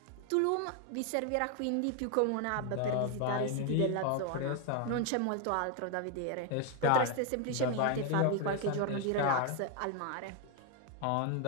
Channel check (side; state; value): both; different; correlation 0.01